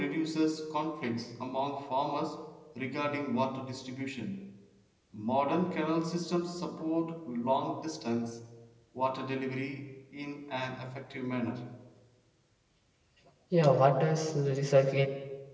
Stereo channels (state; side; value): identical; both; correlation 1.00